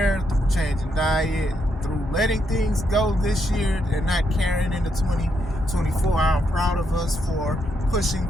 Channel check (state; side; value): normal; both; correlation 0.78